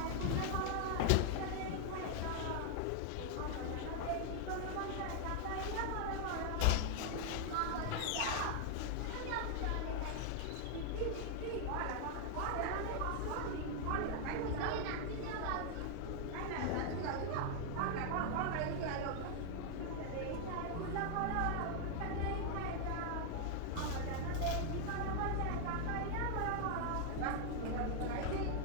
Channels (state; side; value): different; both; correlation 0.00